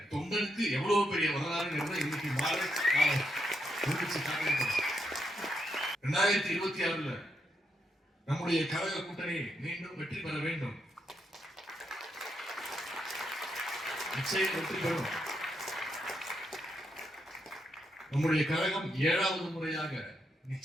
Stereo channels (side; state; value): both; normal; correlation 0.80